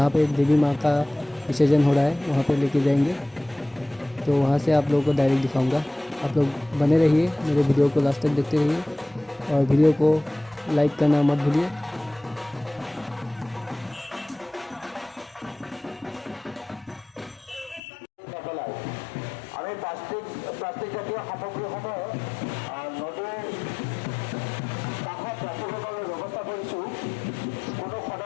पे देवी माँ का विसर्जन हो रहा है वहाँ पे लेके जाएंगे। तो वहाँ से आप लोगों को डायरेक्ट दिखाऊंगा। आप लोग बने रहिए, मेरे वीडियो को लास्ट तक देखते रहिए और वीडियो को लाइक करना मत भूलिए।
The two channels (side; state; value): right; drops out; at 17.8 s